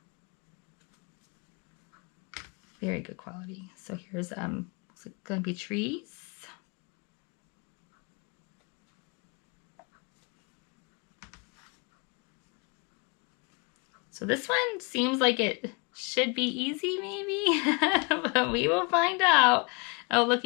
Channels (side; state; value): right; quieter; 31.0 dB